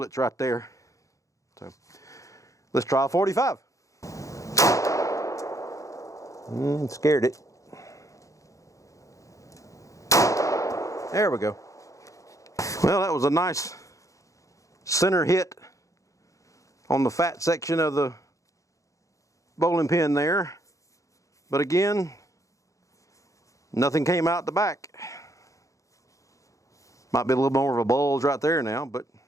right there. So let's try a 45. Scared it. There we go. Well, that was a nice center hit on the fat section of the bowling pin there. But again, nothing came out the back. Might be a little more of a bulge right there now, but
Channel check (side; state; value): right; late; 0.16 ms